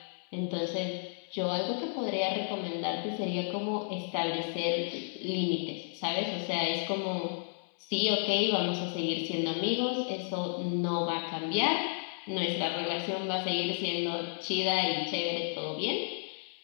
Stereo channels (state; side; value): silent; right; 56 dB below the other